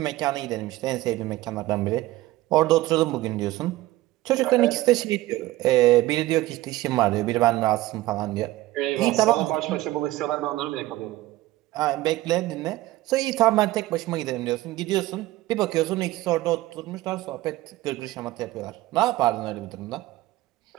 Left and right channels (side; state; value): left; quieter; 17.1 dB